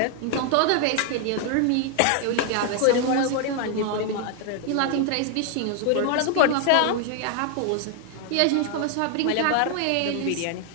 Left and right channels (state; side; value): different; both; correlation 0.00